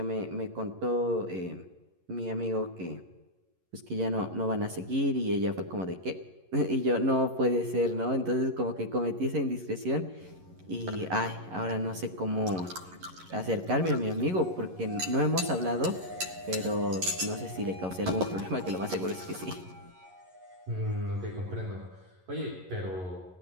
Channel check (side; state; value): left; late; 11 ms